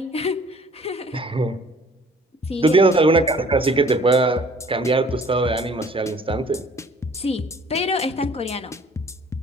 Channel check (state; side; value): normal; both; correlation 0.54